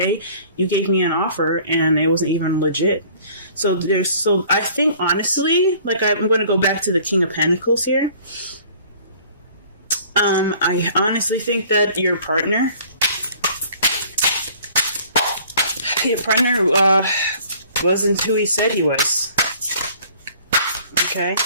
you gave me an offer and it wasn't even legit. So I think honestly, like I'm going to go back to the King of Pentacles here. I honestly think that your partner wasn't who he said he was. Okay,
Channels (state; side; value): inverted; both; correlation -0.52